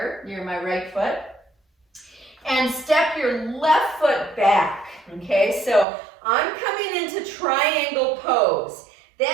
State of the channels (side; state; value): left; drops out; at 5.9 s